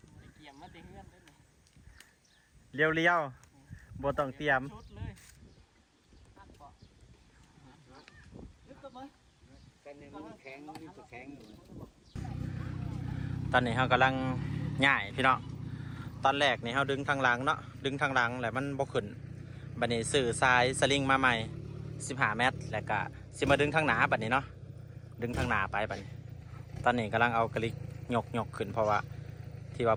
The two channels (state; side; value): identical; both; correlation 1.00